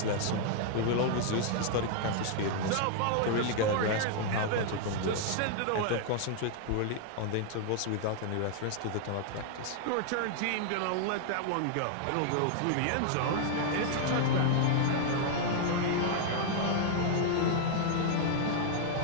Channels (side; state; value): both; different; correlation -0.01